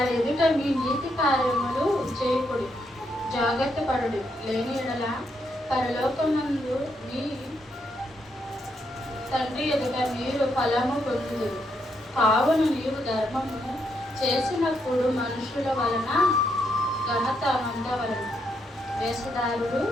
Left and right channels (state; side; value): normal; both; correlation 0.78